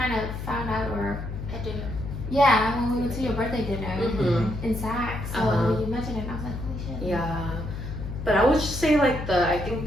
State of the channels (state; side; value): noise; left; hum, 7 dB below the sound